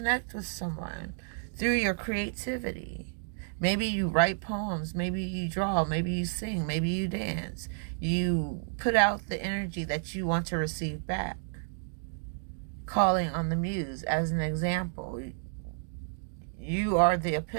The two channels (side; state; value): left; silent; digital silence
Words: with someone through your creativity. Maybe you write poems, maybe you draw, maybe you sing, maybe you dance. You put out the energy that you want to receive back. Calling on the Muse as an example. You are the